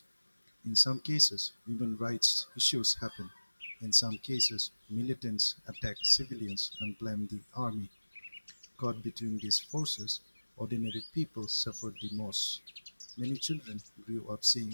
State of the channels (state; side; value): inverted; both; correlation -1.00